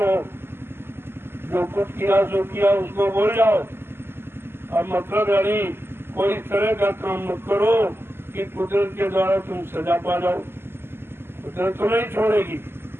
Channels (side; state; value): left; late; 0.11 ms